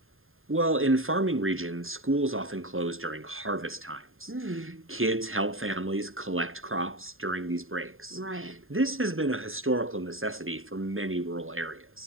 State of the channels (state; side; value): late; left; 0.60 ms